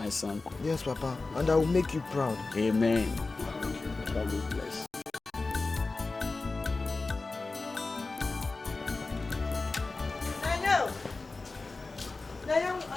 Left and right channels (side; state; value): right; quieter; 3.6 dB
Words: son. Yes, Papa, and I will make you proud. Amen. God will bless.